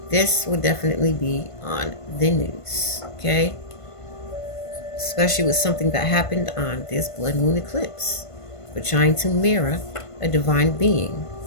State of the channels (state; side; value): late; right; 1.5 ms